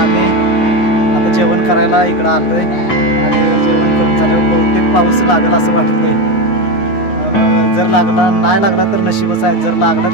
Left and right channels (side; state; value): right; late; 9.6 ms